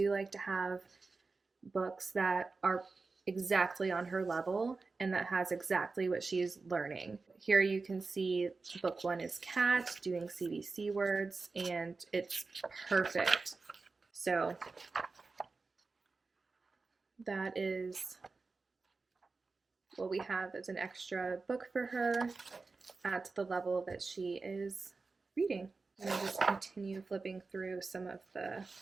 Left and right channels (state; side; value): quieter; left; 4.0 dB